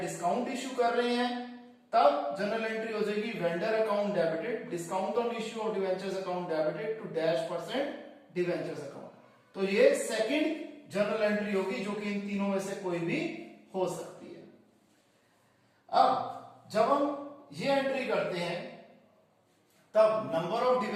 डिस्काउंट इश्यू कर रहे हैं, तब जनरल एंट्री हो जाएगी vendor account debited discount on issue of debentures account debited to -% debentures account. तो ये सेकंड जनरल एंट्री होगी, जो कि इन तीनों में से कोई भी हो सकती है। अब जब हम ये एंट्री करते हैं, तब number of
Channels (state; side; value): identical; both; correlation 1.00